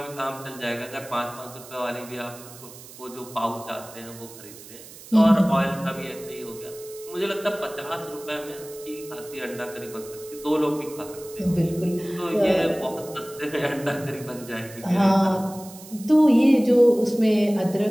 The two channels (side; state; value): right; noise; hiss, 17 dB below the sound